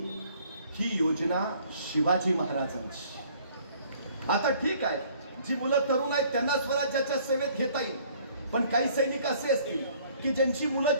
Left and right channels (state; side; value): inverted; both; correlation -0.58